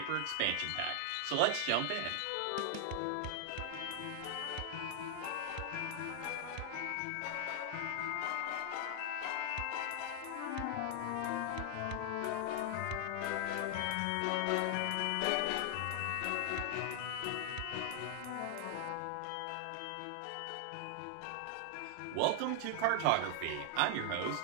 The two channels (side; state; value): both; different; correlation 0.00